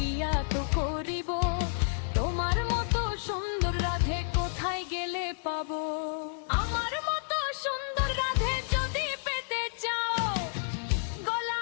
তো করিব, তোমার মতো সুন্দর রাধে কোথায় গেলে পাবো? আমার মতো সুন্দর রাধে যদি পেতে চাও,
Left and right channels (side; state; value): right; silent; digital silence